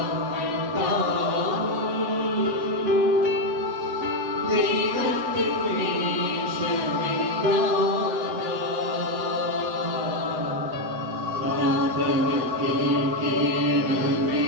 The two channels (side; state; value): left; late; 8.1 ms